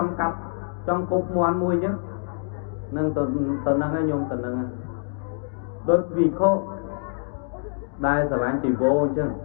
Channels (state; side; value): silent; right; digital silence